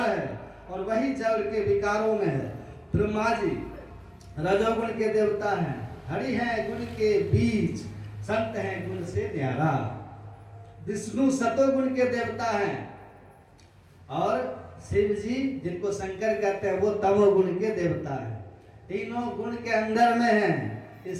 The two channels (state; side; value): identical; both; correlation 1.00